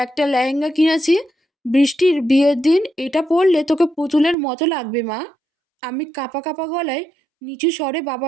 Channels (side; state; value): left; drops out; at 4.4 s